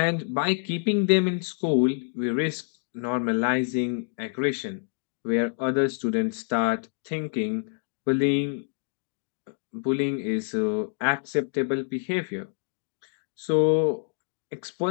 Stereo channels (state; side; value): silent; right; digital silence